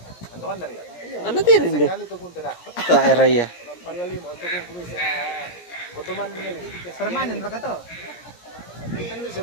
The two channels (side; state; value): right; late; 17 ms